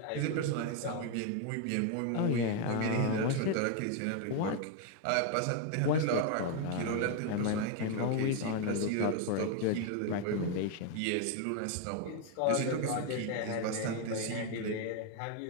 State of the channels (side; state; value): both; different; correlation 0.01